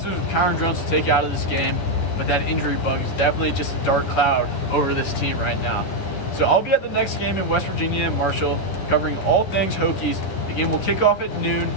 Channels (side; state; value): right; late; 11 ms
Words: with Kyron Drones to take out of this game, but that injury bug is definitely just a dark cloud over this team right now. So I'll be at the next game in West Virginia and Marshall, covering all things Hokies. The game will kick off at noon